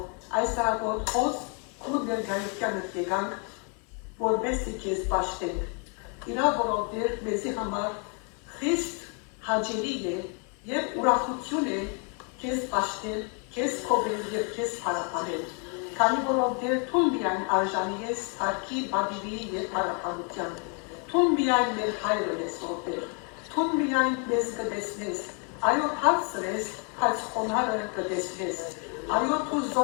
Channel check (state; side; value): quieter; right; 37.9 dB